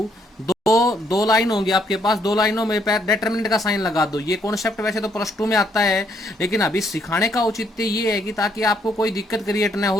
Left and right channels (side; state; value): both; normal; correlation 0.71